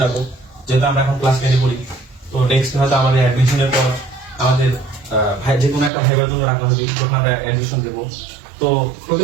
যাবো যেহেতু আমরা এখন ক্লাস 10 পড়ি তো নেক্সট হয়তো আমাদের অ্যাডমিশনের পর আমাদের যে কোনো একটা ভাইবার জন্য রাখা হবে যখন আমরা অ্যাডমিশন দেবো তো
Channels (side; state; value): left; drops out; at 5.9 s